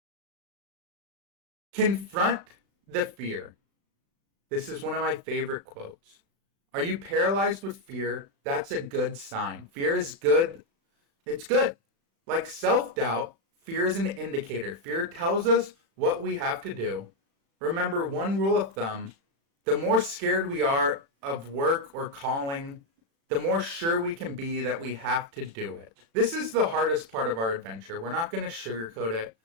Confront the fear. This is one of my favorite quotes. Are you paralyzed with fear? That's a good sign. Fear is good. It's good. Like self-doubt, fear is an indicator. Fear tells us what we have to do. Remember, one rule of thumb, the more scared we are of work or calling, the more sure we can be that we have to do it. This is the hardest part of our adventure. We're not going to sugarcoat it.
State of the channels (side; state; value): left; late; 36 ms